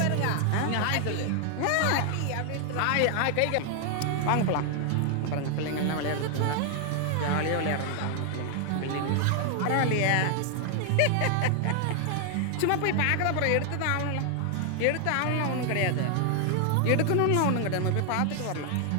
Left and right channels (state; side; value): different; both; correlation 0.00